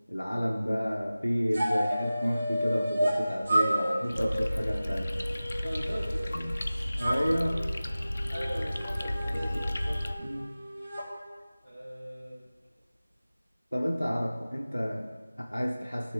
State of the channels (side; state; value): both; inverted; correlation -0.97